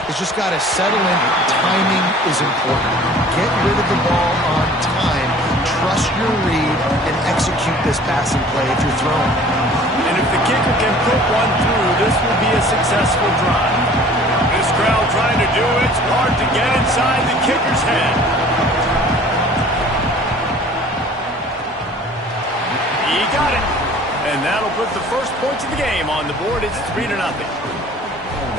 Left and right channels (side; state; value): both; normal; correlation 0.49